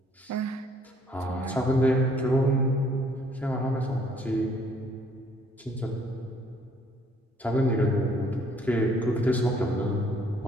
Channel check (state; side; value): normal; both; correlation 0.63